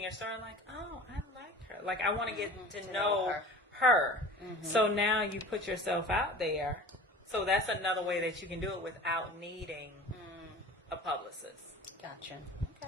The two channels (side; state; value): both; normal; correlation 0.39